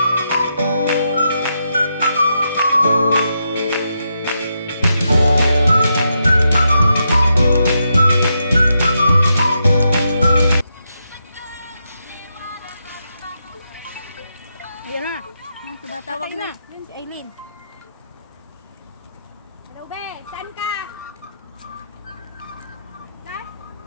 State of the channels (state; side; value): inverted; both; correlation -0.83